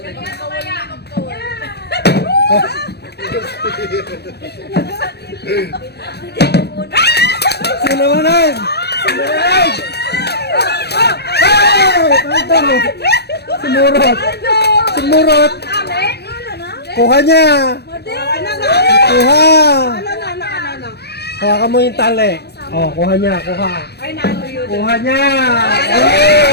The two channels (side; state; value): right; late; 0.48 ms